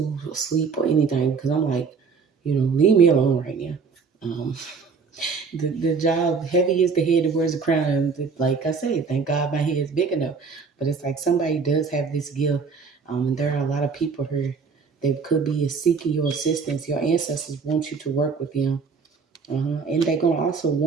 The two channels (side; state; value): left; quieter; 5.2 dB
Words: sleep or anything, because I'm like, leave me alone right now. Um, the job, heavy is the head that wears the crown. And like I say, thank God my head is big enough. But it's like somebody does have this gift. And there are a lot of people here that could be seeking your assistance. Your ancestors want you to work with them. And they're going to also